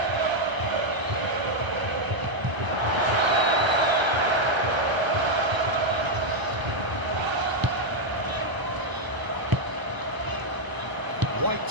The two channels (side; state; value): left; late; 1.0 ms